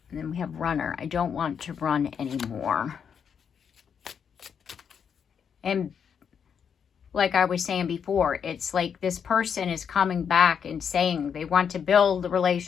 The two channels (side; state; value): right; quieter; 7.3 dB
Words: And then we have runner. I don't want to run anymore. And like I was saying before, it's like this person is coming back and saying they want to build the